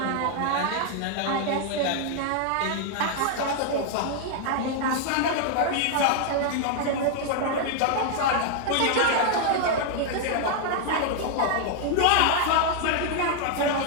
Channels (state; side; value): different; both; correlation 0.00